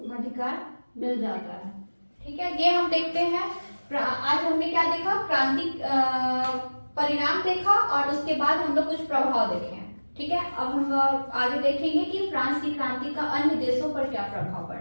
अधिकार मिल जाता है। ठीक है, ये हम देखते हैं। आज हमने क्या देखा, क्रांति परिणाम देखा और उसके बाद हम लोग कुछ प्रभाव देखे हैं। ठीक है, अब हम आगे देखेंगे कि फ्रांस की क्रांति का अन्य देशों पर क्या प्रभाव पड़ा।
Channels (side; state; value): both; inverted; correlation -1.00